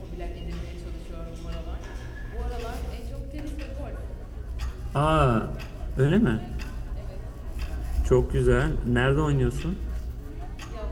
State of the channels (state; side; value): identical; both; correlation 1.00